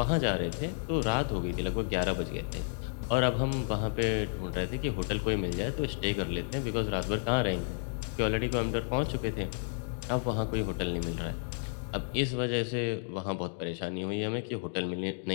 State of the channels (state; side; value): silent; right; digital silence